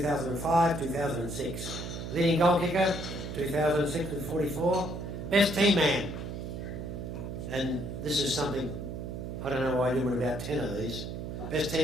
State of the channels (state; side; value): noise; right; hum, 6 dB below the sound